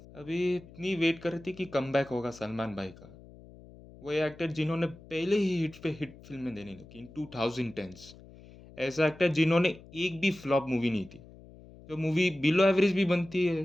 अभी इतनी वेट कर रही थी कि कमबैक होगा सलमान भाई का। वो एक्टर जिन्होंने पहले ही हिट पे हिट फिल्में देने लगी इन 2010s, ऐसा एक्टर जिन्होंने एक भी फ्लॉप मूवी नहीं थी, जो मूवी बिलो एवरेज भी बनती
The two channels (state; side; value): noise; left; hum, 20 dB below the sound